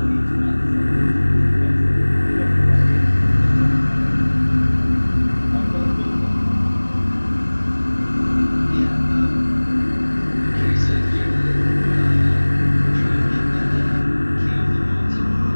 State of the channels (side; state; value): both; inverted; correlation -1.00